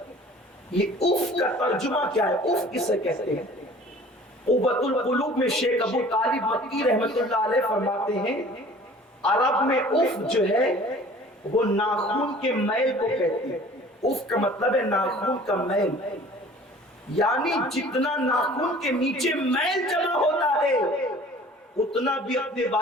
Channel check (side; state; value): both; normal; correlation 0.48